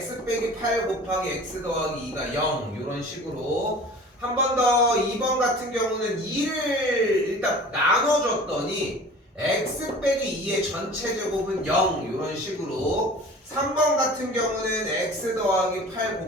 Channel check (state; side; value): normal; both; correlation 0.42